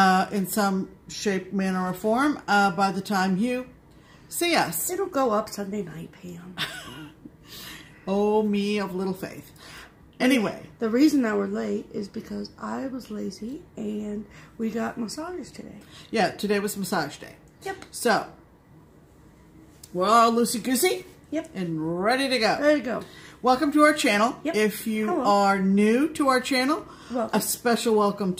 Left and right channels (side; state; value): both; identical; correlation 1.00